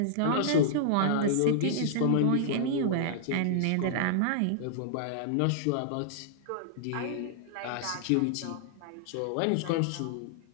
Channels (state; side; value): different; both; correlation -0.01